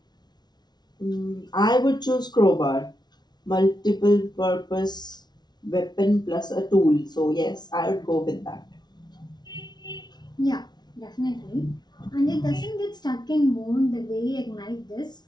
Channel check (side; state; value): right; late; 0.20 ms